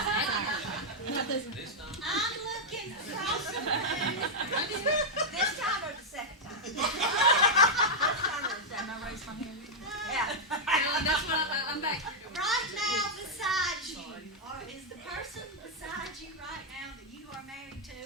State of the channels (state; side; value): normal; both; correlation -0.04